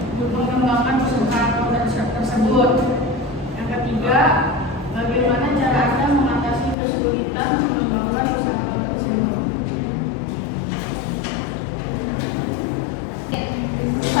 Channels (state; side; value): drops out; right; at 6.8 s